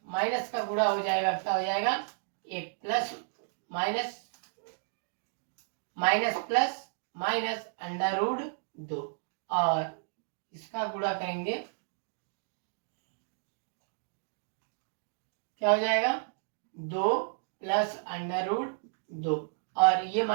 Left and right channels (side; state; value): left; silent; digital silence